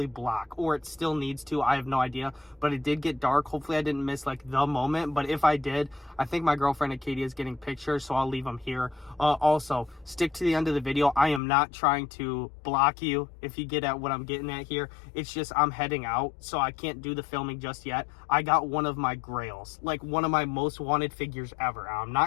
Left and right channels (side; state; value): right; drops out; at 11.4 s